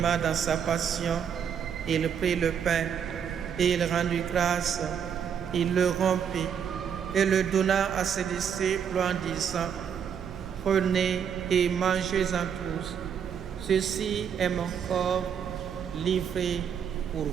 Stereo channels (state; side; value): quieter; left; 7.9 dB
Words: dans sa passion, il prit le pain et il rendit grâce, il le rompit et le donna à ses disciples en disant: Prenez et mangez-en tous. Ceci est mon corps livré pour